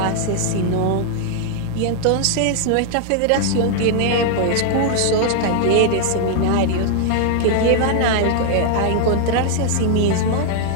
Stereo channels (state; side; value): different; both; correlation 0.00